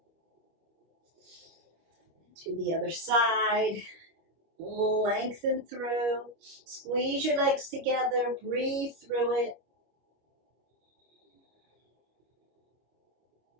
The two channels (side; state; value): left; late; 25 ms